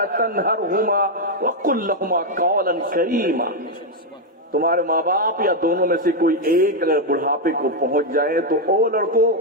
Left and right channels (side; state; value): both; normal; correlation 0.01